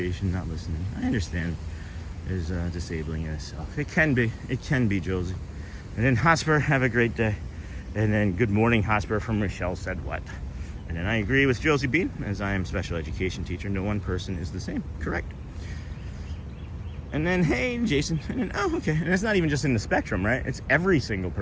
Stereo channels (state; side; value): identical; both; correlation 1.00